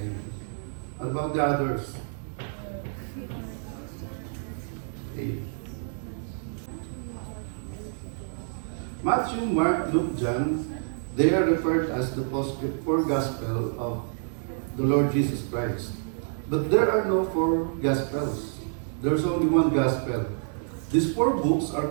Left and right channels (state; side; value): silent; left; digital silence